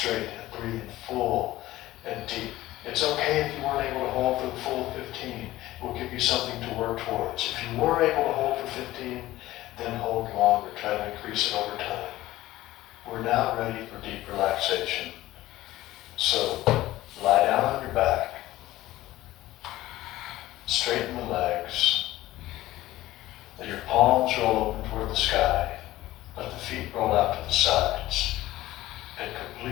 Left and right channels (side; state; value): right; quieter; 16.2 dB